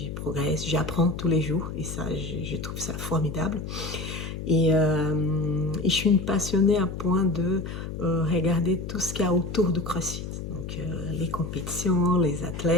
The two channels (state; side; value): noise; left; hum, 7 dB below the sound